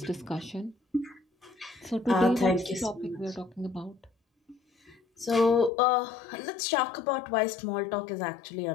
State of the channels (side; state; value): right; drops out; at 5.7 s